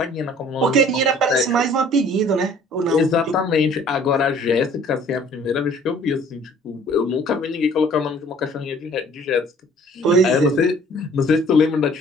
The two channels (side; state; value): both; normal; correlation 0.54